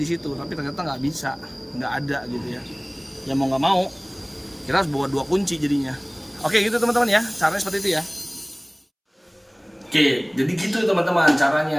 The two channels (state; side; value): identical; both; correlation 1.00